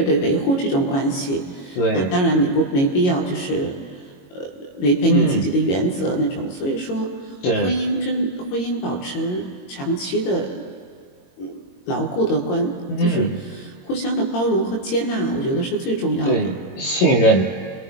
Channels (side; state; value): right; late; 22 ms